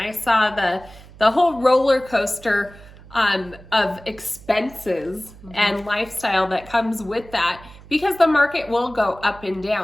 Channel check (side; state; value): right; noise; hum, 20 dB below the sound